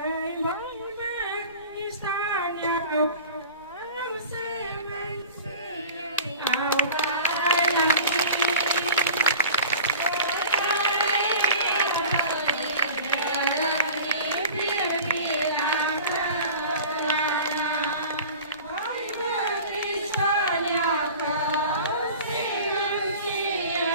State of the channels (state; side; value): inverted; both; correlation -0.40